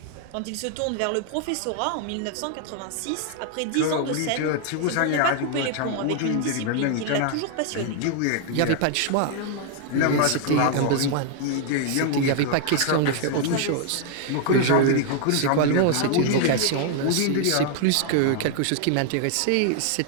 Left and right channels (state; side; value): different; both; correlation 0.00